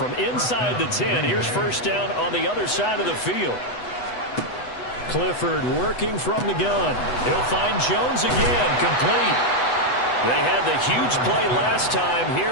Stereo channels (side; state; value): right; late; 8.1 ms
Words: inside the 10, here's 1st down on the other side of the field. Clifford working from the gun. He'll find Jones again, complete. They had the huge play last time.